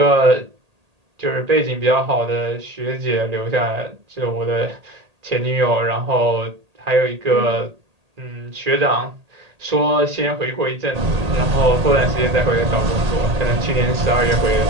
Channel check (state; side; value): late; left; 1.8 ms